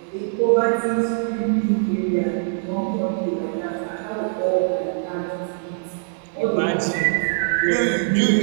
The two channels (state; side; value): silent; left; 64 dB below the other